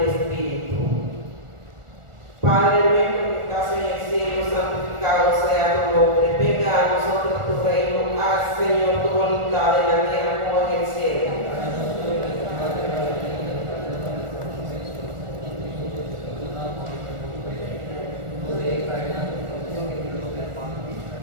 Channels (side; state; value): left; late; 1.4 ms